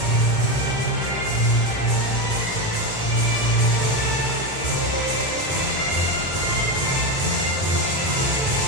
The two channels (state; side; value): late; right; 1.9 ms